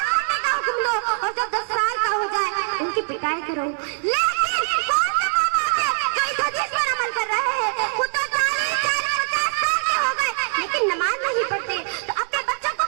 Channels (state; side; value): silent; left; 64 dB below the other